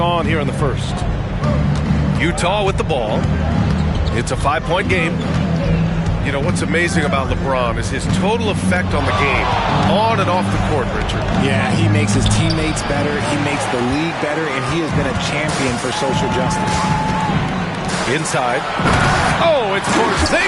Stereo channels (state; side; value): identical; both; correlation 1.00